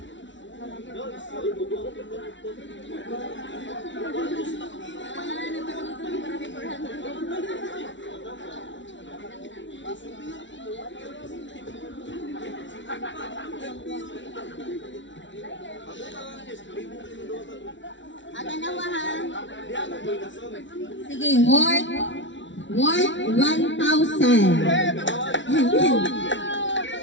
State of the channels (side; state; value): right; late; 0.55 ms